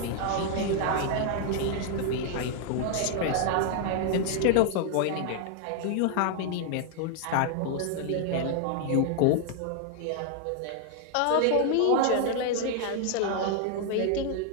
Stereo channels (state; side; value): different; both; correlation 0.00